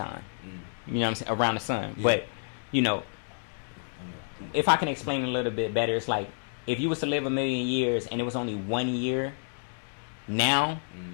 You know what I'm saying, around the sun. But you know, if I can explain it a little bit better, it's like if you was to live 1 million years and it was only 1 year now,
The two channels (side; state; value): right; silent; digital silence